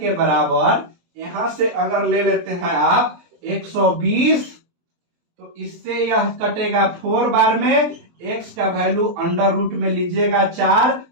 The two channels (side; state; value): left; late; 23 ms